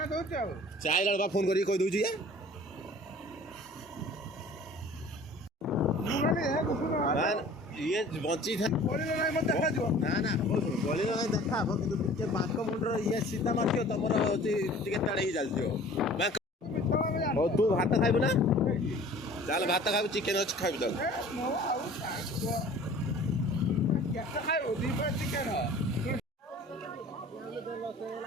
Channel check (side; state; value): both; normal; correlation 0.47